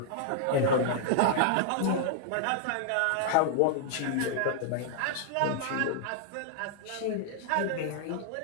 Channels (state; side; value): different; both; correlation -0.01